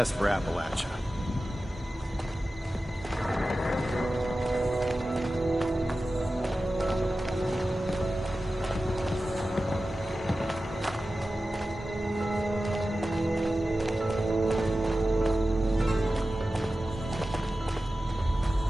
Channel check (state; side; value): normal; both; correlation 0.94